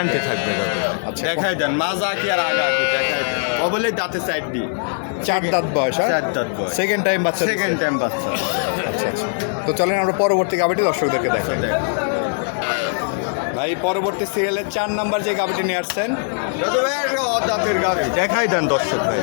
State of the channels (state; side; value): silent; right; digital silence